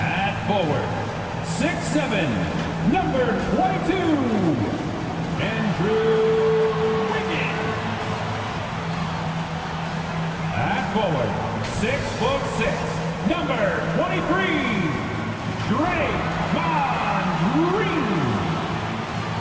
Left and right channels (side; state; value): both; identical; correlation 1.00